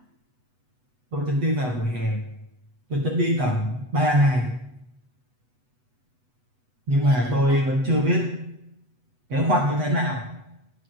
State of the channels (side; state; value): left; late; 8.0 ms